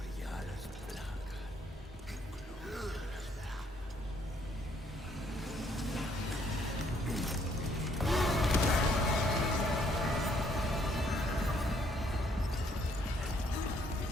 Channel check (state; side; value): normal; both; correlation 0.68